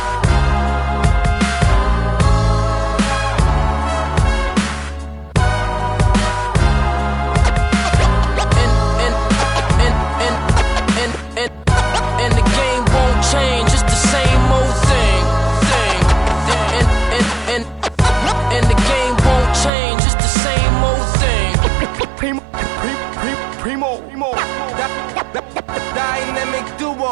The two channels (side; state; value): left; drops out; at 19.7 s